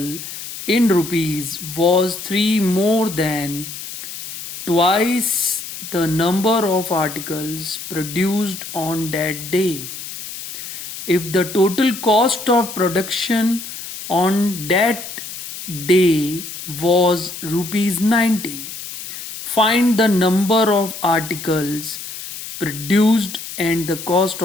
in rupees was 3 more than twice the number of articles produced on that day. If the total cost of production on that day was rupees 90, find the number of articles produced and the cost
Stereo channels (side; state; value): left; noise; hiss, 10 dB below the sound